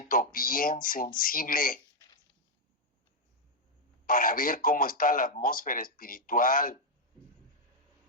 bien sensible para ver cómo está la atmósfera espiritual.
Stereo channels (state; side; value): normal; both; correlation -0.01